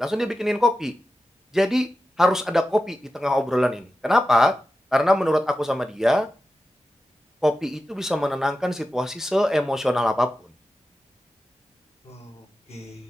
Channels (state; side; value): normal; both; correlation 0.92